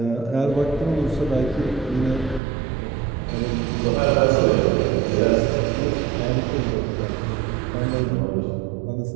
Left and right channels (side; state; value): left; drops out; at 2.4 s